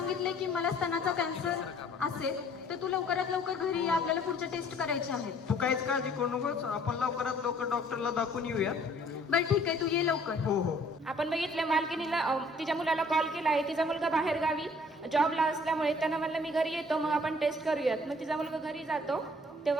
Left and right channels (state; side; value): normal; both; correlation 0.57